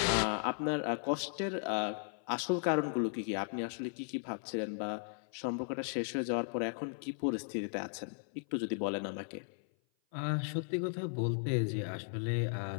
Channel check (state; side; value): silent; right; 54 dB below the other